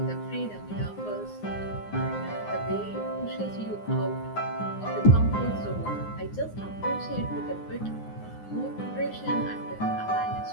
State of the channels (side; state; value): right; late; 9.7 ms